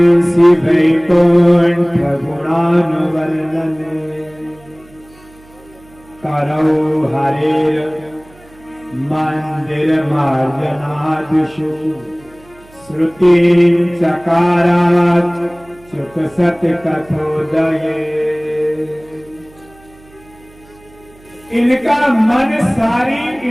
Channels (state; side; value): noise; right; hum, 26 dB below the sound